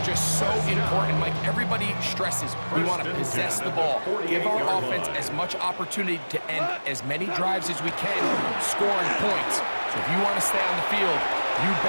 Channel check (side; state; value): both; inverted; correlation -1.00